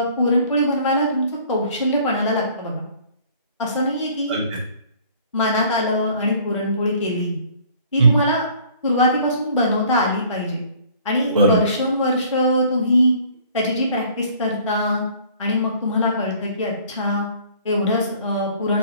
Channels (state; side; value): inverted; both; correlation -0.54